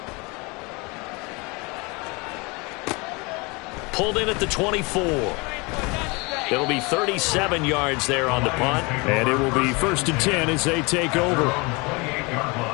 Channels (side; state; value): right; quieter; 27.7 dB